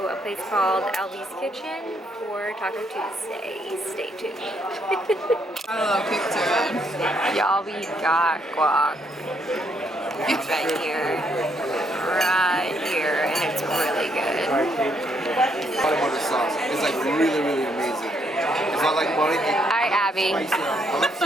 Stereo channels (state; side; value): normal; both; correlation 0.73